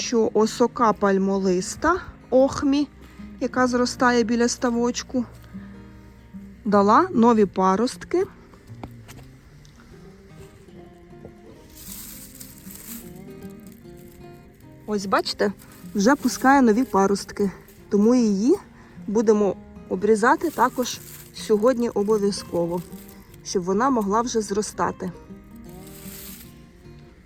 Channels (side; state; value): both; identical; correlation 1.00